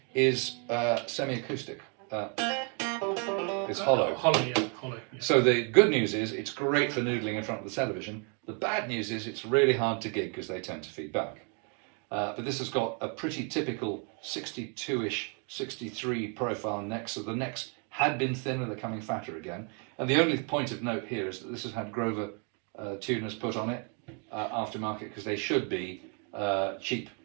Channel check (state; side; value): quieter; left; 38.2 dB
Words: is semi-acoustic. It's hollow. Hollow, yeah. Hollow. Yeah. So the good news is it's great for noodling in front of the television. The bad news is it's really hard to gig because they tend to feed back. But this has got a pretty typical 62-ish, 63 profile neck. So the necks had been thinner, they're coming fatter again. And the only point of note here is that this has had Grover tuners put on it aftermarket because they should be cheap